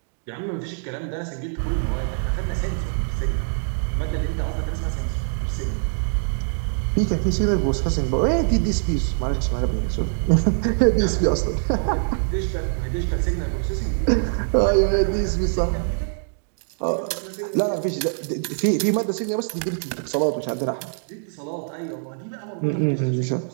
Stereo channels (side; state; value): left; silent; digital silence